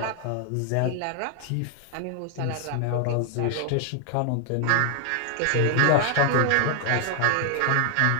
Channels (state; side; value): different; both; correlation 0.00